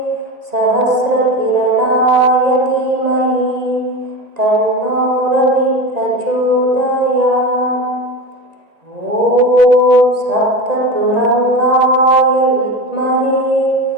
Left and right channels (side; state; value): left; late; 1.9 ms